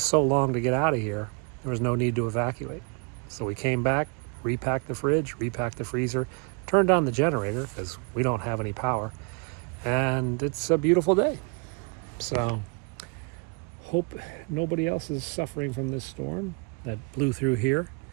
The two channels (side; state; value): left; quieter; 33.5 dB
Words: so long to get out of here, there was no need to evacuate. So we came back, repacked the fridge, repacked the freezer, turned on the generator because we don't have any power, and it's a beautiful day. So hope nobody else is suffering from this storm that blew through here,